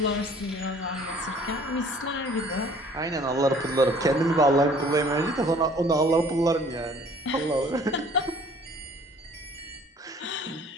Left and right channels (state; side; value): normal; both; correlation 0.53